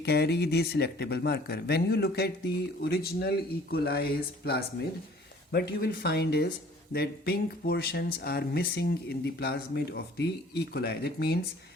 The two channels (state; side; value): normal; both; correlation 0.52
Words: the selectable marker. When you look at the original E. coli's plasmid, what you will find is that pink portions are missing in the plasmid of the E. coli. That means